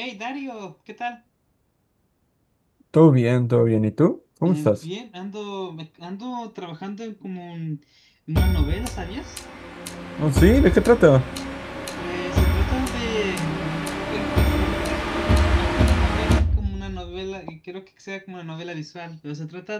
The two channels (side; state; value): both; identical; correlation 1.00